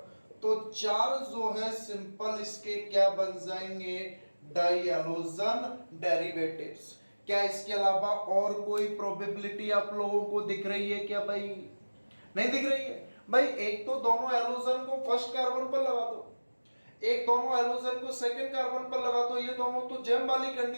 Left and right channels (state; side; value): inverted; both; correlation -1.00